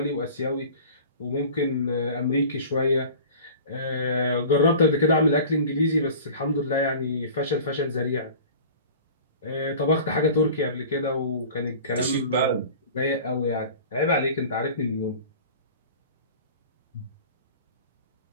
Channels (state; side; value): inverted; both; correlation -0.41